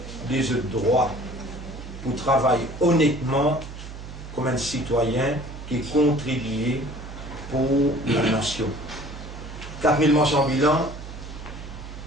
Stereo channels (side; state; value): right; noise; hum, 11 dB below the sound